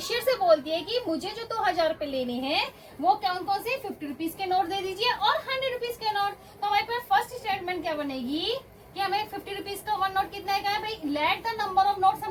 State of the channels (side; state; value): both; identical; correlation 1.00